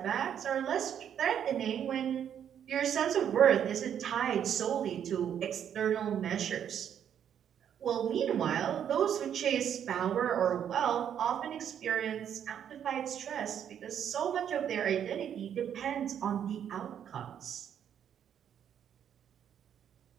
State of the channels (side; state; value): left; quieter; 9.1 dB